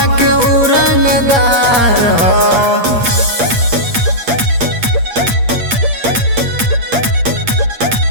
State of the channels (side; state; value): left; late; 8.6 ms